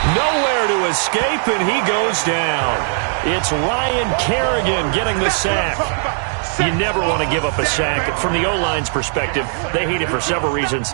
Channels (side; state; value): left; silent; digital silence